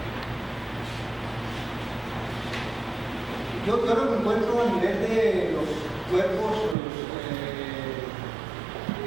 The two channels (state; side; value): drops out; left; at 6.8 s